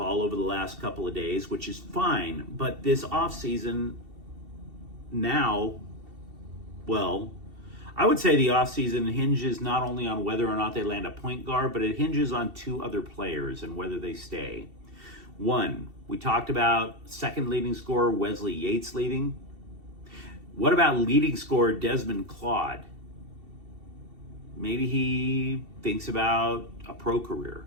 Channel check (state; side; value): late; left; 2.7 ms